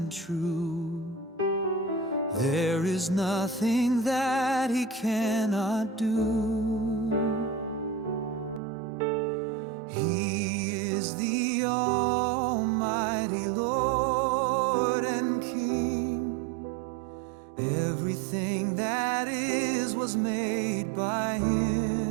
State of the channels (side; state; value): left; drops out; at 8.6 s